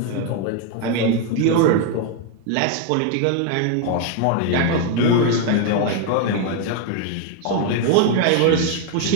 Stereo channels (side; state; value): both; different; correlation 0.01